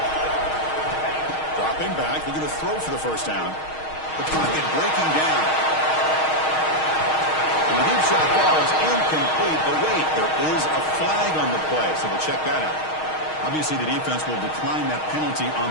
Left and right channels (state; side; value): late; right; 6.4 ms